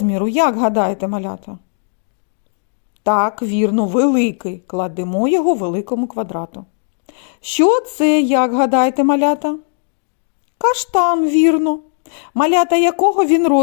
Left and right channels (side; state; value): right; silent; digital silence